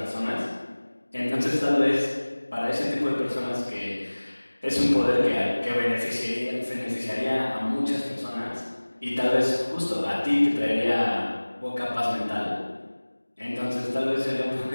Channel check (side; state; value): both; inverted; correlation -1.00